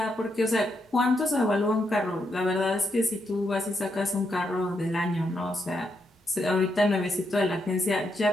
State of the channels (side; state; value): both; normal; correlation 0.80